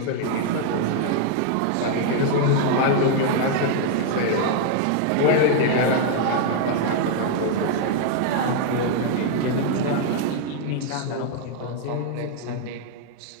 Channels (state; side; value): different; both; correlation 0.00